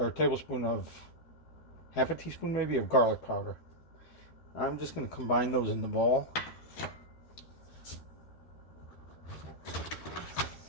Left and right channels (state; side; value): late; right; 12 ms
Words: a tablespoon of, half a teaspoon maybe, of garlic powder. I'm just going to combine those in the bowl.